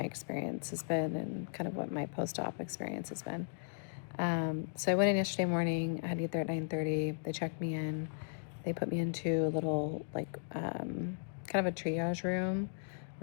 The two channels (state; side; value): silent; right; digital silence